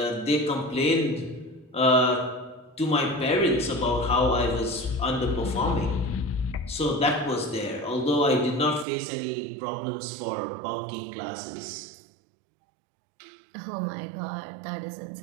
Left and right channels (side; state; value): left; drops out; at 8.8 s